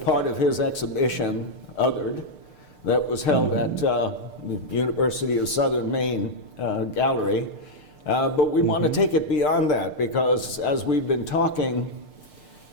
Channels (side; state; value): right; late; 6.6 ms